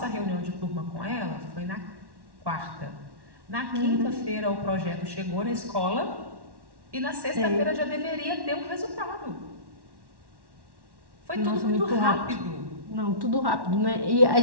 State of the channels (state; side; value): late; left; 1.1 ms